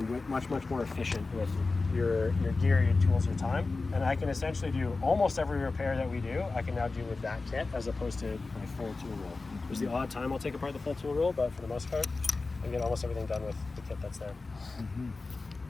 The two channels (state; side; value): quieter; right; 3.7 dB